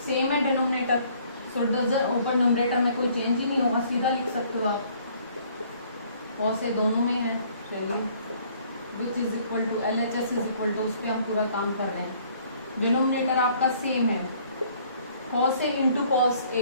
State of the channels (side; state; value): both; inverted; correlation -0.60